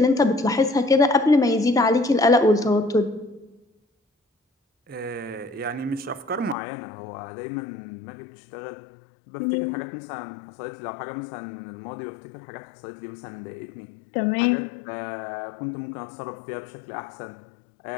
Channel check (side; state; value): right; drops out; at 6.6 s